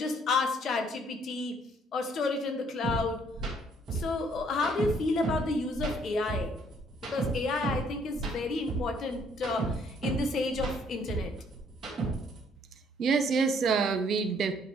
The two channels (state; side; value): normal; both; correlation 0.64